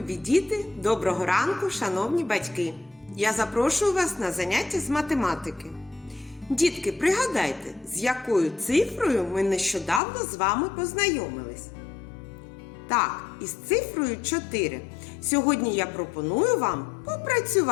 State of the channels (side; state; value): right; drops out; at 10.0 s